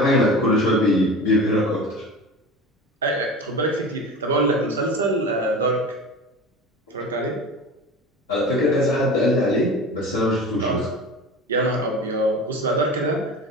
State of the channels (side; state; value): both; normal; correlation 0.33